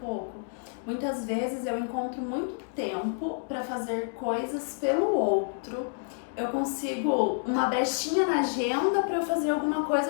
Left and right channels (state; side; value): silent; right; digital silence